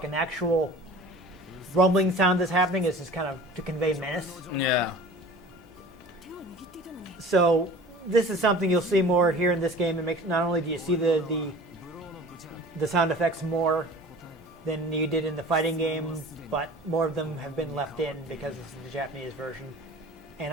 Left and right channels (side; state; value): both; normal; correlation 0.42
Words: an actual rumbling sound that's happening. It's just kind of to convey menace. Yeah. So this is something you'll see more here in this game. It makes not only do you see the sound effects more than you did in the fighting game, but more of them have been left in because this is the Japanese version. And